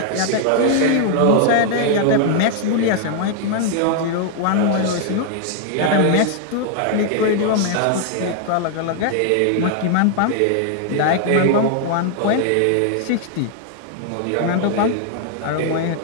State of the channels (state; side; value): different; both; correlation 0.00